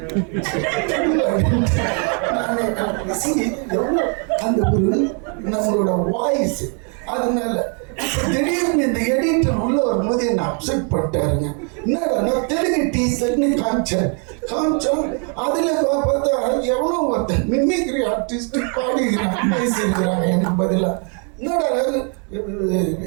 எவ்வளோ அந்த ஒரு நம்மளோட வாய்ஸ். அதனால திடீர்னு இந்த எடிட்டர் உள்ள வரும்போது என்ன அப்செட் பண்ணிட்டாருங்க. என்னடா தெலுங்கு டீசர்ட்னு காமிச்சோம். அதுல பார்த்தா எவ்வளோ ஒருத்தன் மிமிக்ரி ஆர்டிஸ்ட் பாடிக்கிறான், பேசியிருக்கிறாங்க எனக்கு பதிலா. என்னடா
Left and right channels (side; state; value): left; quieter; 39.2 dB